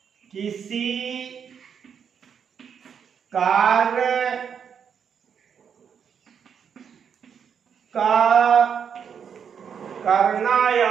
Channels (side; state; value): left; quieter; 7.4 dB